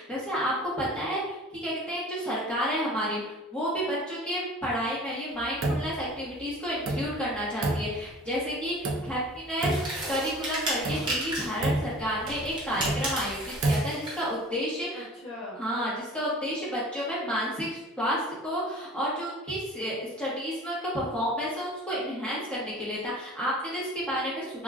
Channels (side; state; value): both; normal; correlation 0.43